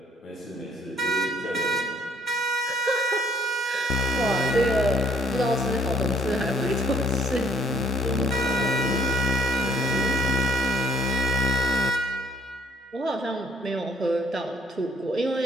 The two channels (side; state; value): both; normal; correlation 0.60